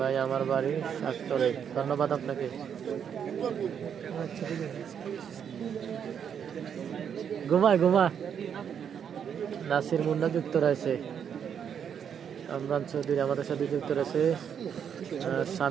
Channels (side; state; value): left; quieter; 8.0 dB